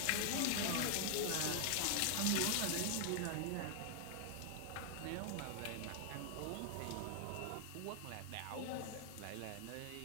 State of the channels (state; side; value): different; both; correlation 0.00